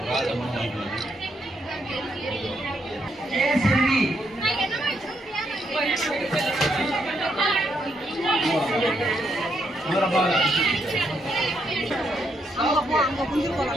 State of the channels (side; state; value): both; normal; correlation 0.77